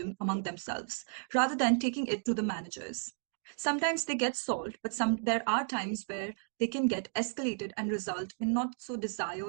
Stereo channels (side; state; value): left; silent; digital silence